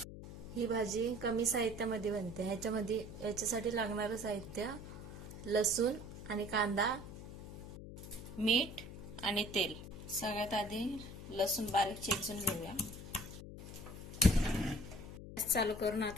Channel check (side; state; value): left; noise; hum, 12 dB below the sound